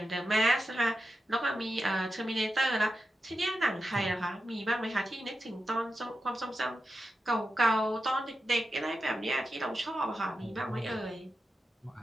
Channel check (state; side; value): normal; both; correlation 0.90